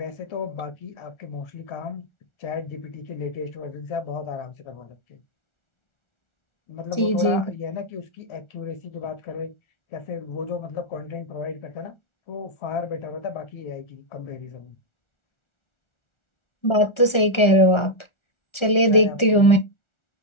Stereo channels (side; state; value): right; late; 1.4 ms